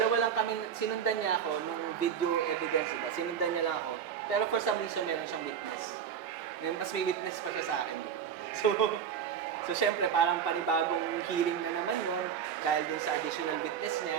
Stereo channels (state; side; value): quieter; left; 8.1 dB